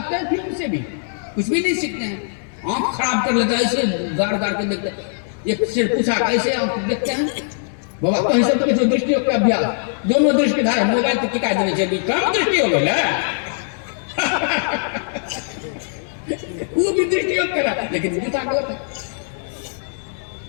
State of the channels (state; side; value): silent; right; 65 dB below the other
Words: हैं फिल्म से भी? कुछ भी नहीं सीखते हैं। आंख खराब कर लेता है, ऐसे गाड़ गाड़ के देखते हैं। एक से पूछा कैसे आप देखते हैं बाबा, कहीं से तो किसी दृष्टि का अभ्यास, दोनों दृष्टि धारा मोबाइल तो टिका देने चाहिए, कम दृष्टि हो गया वो भी दृष्टि करा, लेकिन पूछा गलत है।